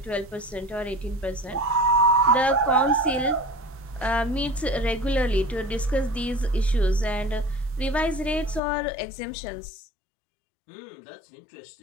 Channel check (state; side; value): drops out; right; at 8.6 s